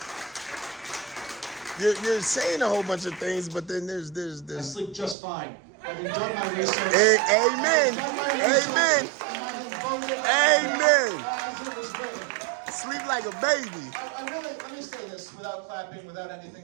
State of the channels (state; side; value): drops out; left; at 5.2 s